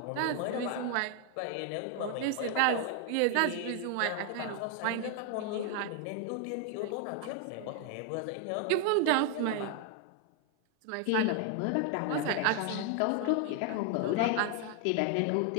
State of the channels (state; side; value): different; both; correlation 0.00